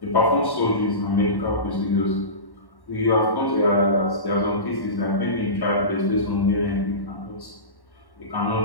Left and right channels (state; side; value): late; right; 1.1 ms